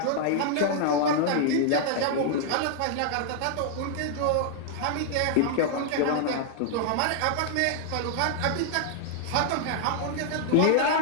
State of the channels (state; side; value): different; both; correlation -0.01